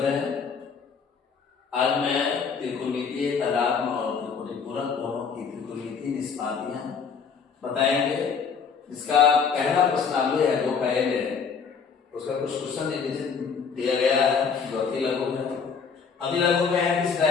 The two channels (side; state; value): right; quieter; 6.0 dB